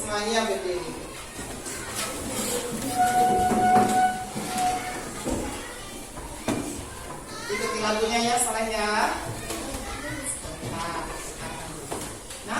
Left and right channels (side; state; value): both; identical; correlation 1.00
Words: berdiri. Ikuti lagunya ya, Saleh ya.